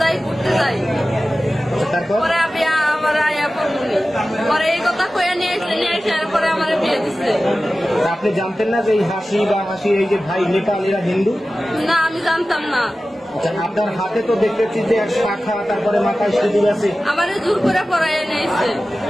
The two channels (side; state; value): both; normal; correlation 0.95